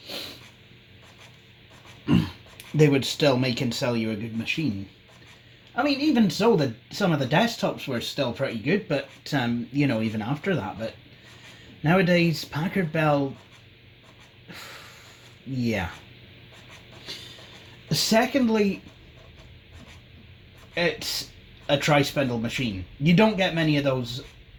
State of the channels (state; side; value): identical; both; correlation 1.00